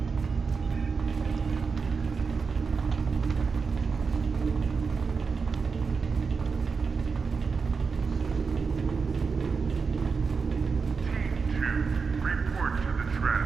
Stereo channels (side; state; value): left; quieter; 5.1 dB